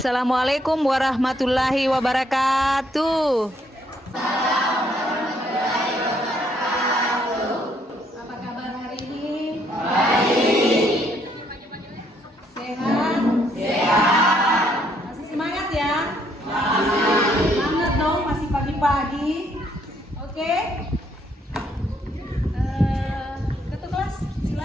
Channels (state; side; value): normal; both; correlation 0.69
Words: Assalamualaikum warahmatullahi wabarakatuh. Apa kabar hari ini? Baik. Sehat? Sehat. Masih semangat ya? Masih. Semangat dong, masih pagi-pagi. Oke? Ketua kelas,